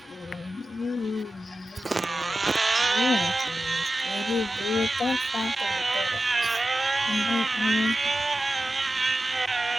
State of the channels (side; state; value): both; normal; correlation 0.93